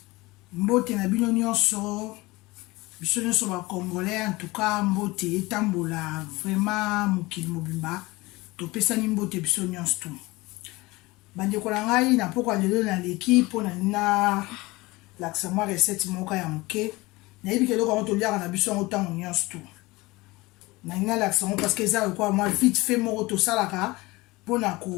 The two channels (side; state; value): right; quieter; 21.7 dB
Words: Mbote na bino nyonso, biso nyonso ba Congolais, en tout cas mbote etambola vraiment mokili mobimba. Topesani mbote biso nyonso tu. Bandeko na ngai na poko lelo na leki pona na laksa mwa recette moka ya moke. Na yebi keloko ngo toliaka na biso ngo tango nyonso tu. Na ina laksa ngo parce que ça quoi moi vite fait moko to salaka. Pona